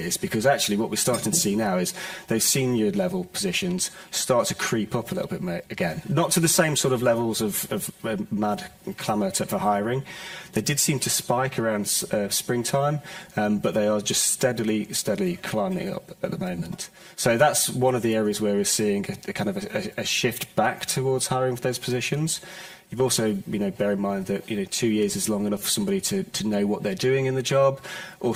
because actually what we're starting to see now is those senior level positions start to creep up a little bit again. Not to the same sort of levels of mad clamour for hiring. They did seem to spike around springtime, but they are just steadily climbing up at the moment. So that's one of the areas where we're seeing a kind of a shift back towards hiring for those positions. You've also, bear in mind that, 2 years is long enough for somebody to know what they're doing in the job,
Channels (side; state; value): both; identical; correlation 1.00